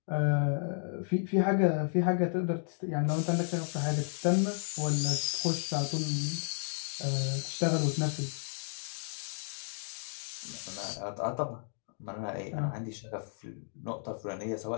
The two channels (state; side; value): silent; right; digital silence